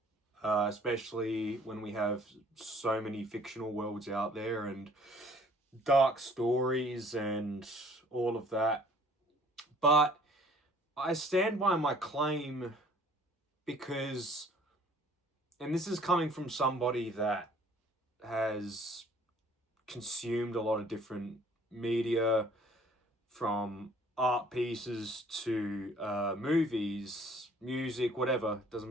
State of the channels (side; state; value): both; normal; correlation 0.56